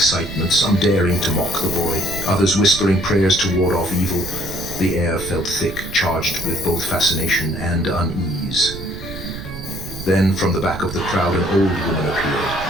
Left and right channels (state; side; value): noise; right; rumble, 11 dB below the sound